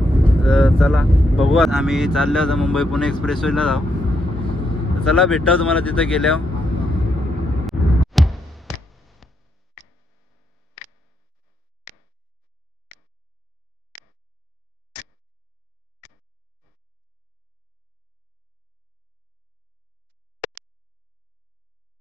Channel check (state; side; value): normal; both; correlation 0.79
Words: तर चला बघू. आम्ही चाललो आता मुंबई पुणे एक्सप्रेसवेला जाऊ. तर चला भेटाव तुम्हाला तिथं गेल्यावर.